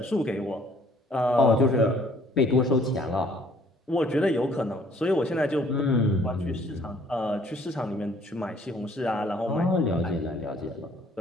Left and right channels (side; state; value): both; normal; correlation 0.59